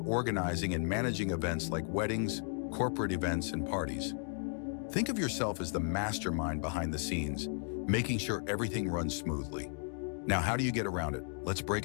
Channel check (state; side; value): silent; right; 55 dB below the other